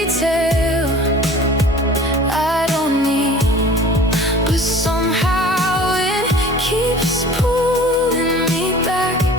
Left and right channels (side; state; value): both; normal; correlation 0.45